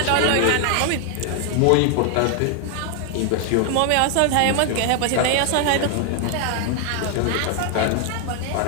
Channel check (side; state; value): both; different; correlation 0.00